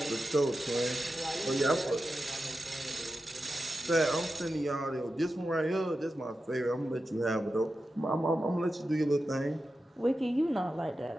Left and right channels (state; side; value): normal; both; correlation 0.91